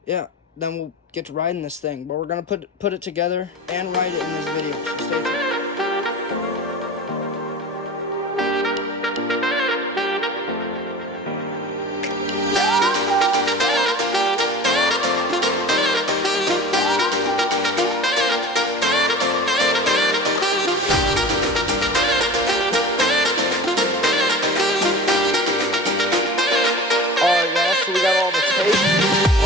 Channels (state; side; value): normal; both; correlation 0.37